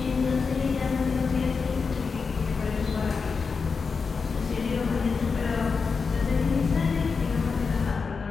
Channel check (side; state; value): right; quieter; 5.1 dB